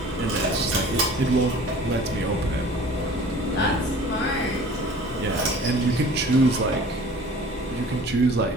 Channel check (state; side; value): normal; both; correlation 0.46